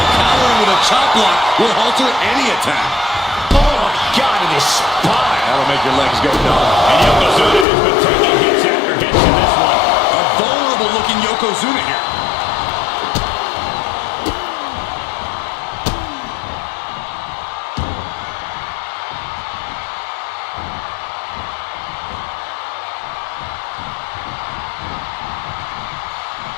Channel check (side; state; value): right; drops out; at 7.7 s